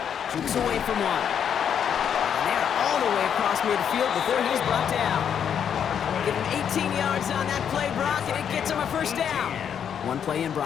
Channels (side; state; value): right; quieter; 8.3 dB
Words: Jukes away from one. And they're all the way across midfield before he's brought down. Get him 18 yards on that play, Brock, and it gets him a first down. One play in,